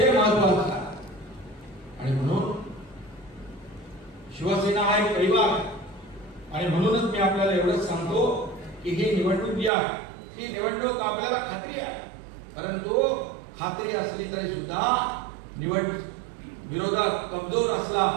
महत्वाचं आहे. आणि म्हणून शिवसेना हा एक परिवार आहे. आणि म्हणूनच मी आपल्याला एवढंच सांगतो की ही निवडणूक जी आहे, ही निवडणूक आपल्याला खात्री आहे. परंतु खात्री असली तरी सुद्धा विरोधात कमजोर असला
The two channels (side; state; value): left; drops out; at 9.7 s